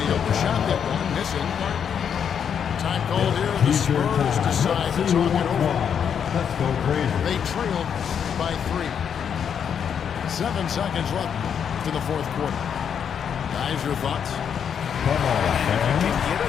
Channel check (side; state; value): right; quieter; 7.8 dB